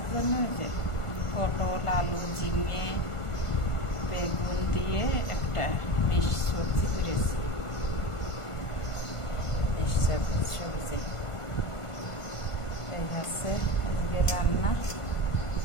জন্য এই যে পটল, আলু, ঝিঙে, বেগুন দিয়ে একটা মিক্স সবজি করেছি। মিক্স সবজি এই আছে আজকে রান্না।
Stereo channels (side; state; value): right; late; 1.5 ms